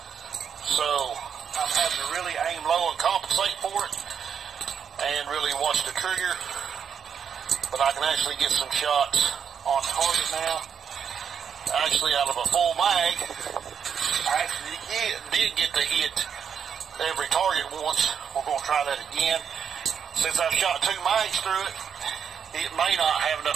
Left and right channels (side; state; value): left; quieter; 7.4 dB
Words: So I'm having to really aim low and compensate for it. And really watch the trigger. But I can actually get some shots on target now. Actually, out of a full mag, I actually did get to hit every target once. We're going to try that again. Since I've shot 2 mags through it, it may not have